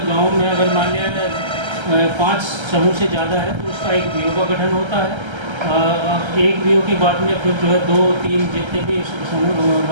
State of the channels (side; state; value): left; late; 1.3 ms